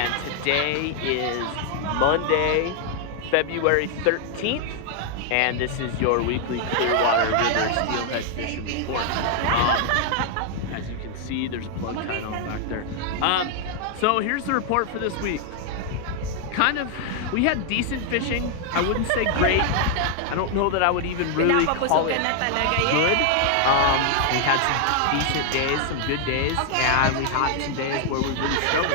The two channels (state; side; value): different; both; correlation 0.00